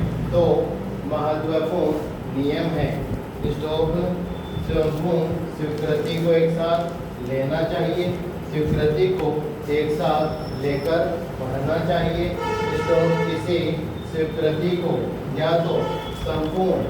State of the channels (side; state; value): both; identical; correlation 1.00